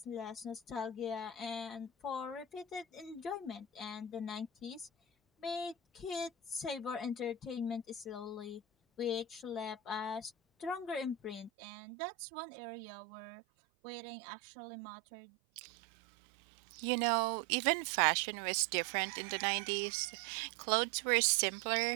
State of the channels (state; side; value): drops out; left; at 11.5 s